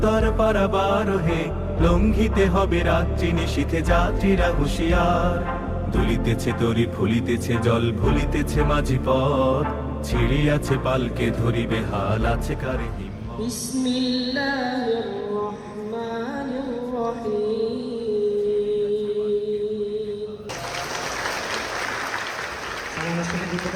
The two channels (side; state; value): both; identical; correlation 1.00